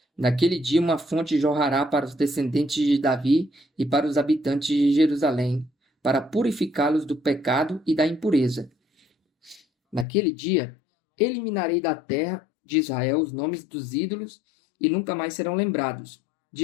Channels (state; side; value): drops out; right; at 10.1 s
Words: Naquele dia uma fonte jorrará para os descendentes de Davi e para os habitantes de Jerusalém, para purificá-los do pecado e da impureza. Naquele dia, eliminarei da terra de Israel os nomes dos ídolos e nunca mais serão lembrados,